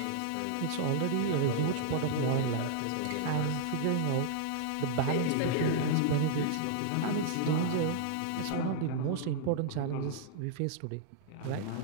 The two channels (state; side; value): different; both; correlation -0.01